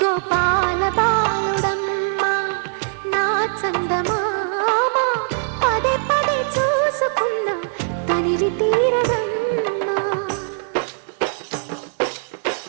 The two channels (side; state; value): left; silent; 65 dB below the other